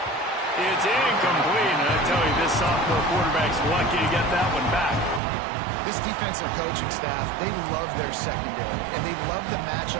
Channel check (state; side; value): drops out; left; at 5.2 s